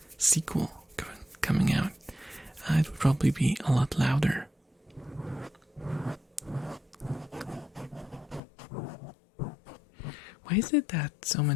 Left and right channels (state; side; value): drops out; right; at 8.4 s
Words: sequel coming out, it would probably be a lot louder. Why is it that so